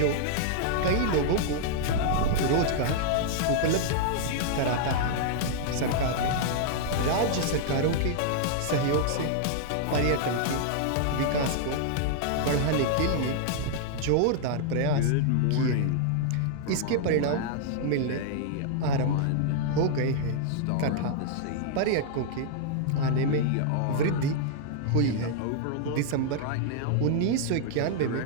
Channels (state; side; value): different; both; correlation -0.01